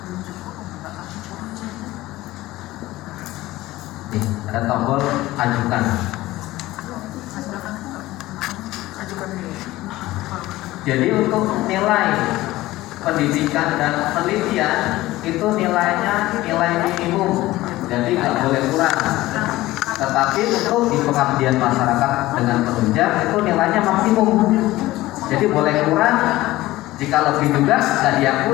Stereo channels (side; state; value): right; quieter; 17.4 dB